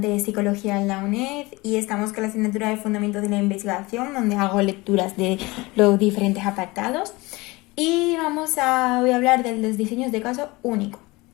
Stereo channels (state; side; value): quieter; right; 22.8 dB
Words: de Psicología en la UNED y estamos con la asignatura de Fundamentos de la Investigación, donde hago lecturas de los diferentes apartados. Y voy a hablar de los diseños de caso único.